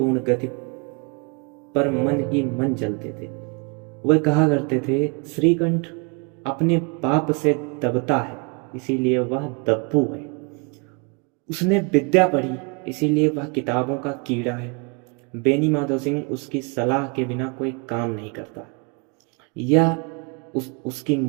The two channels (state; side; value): quieter; left; 32.6 dB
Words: गति पर मन ही मन जलते थे। वह कहा करते थे, श्रीकंठ अपने बाप से दबता है, इसीलिए वह दब्बू है। उसने विद्या पढ़ी, इसीलिए वह किताबों का कीड़ा है। बेनी माधव सिंह उसकी सलाह के बिना कोई काम नहीं करता। यह उसकी